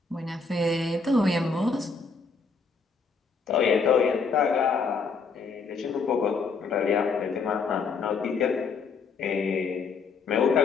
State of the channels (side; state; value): right; quieter; 4.9 dB